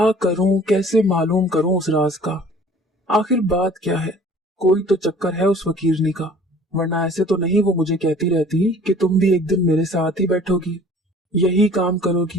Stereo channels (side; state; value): both; normal; correlation 0.50